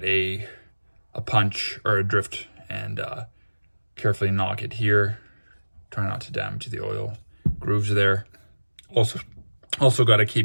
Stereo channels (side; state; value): both; inverted; correlation -1.00